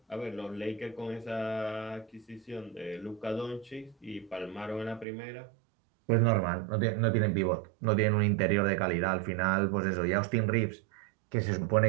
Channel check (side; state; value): left; drops out; at 5.1 s